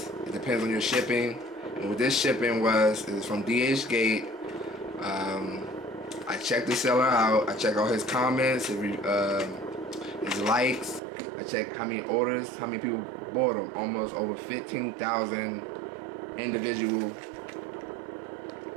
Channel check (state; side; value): drops out; left; at 11.0 s